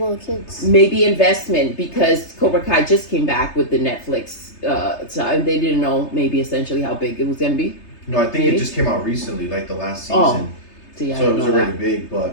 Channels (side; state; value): right; late; 3.3 ms